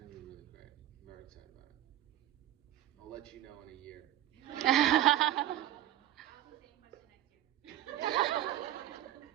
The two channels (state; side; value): quieter; left; 13.3 dB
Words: to be really great. very excited about it. I'll let you know in a year. I'll do the same question next year.